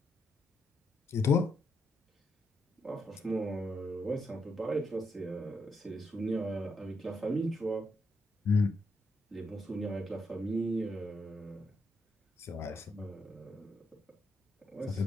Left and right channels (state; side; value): normal; both; correlation 0.80